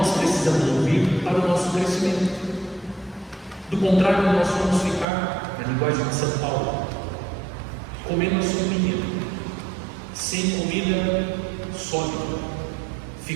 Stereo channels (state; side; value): drops out; left; at 5.1 s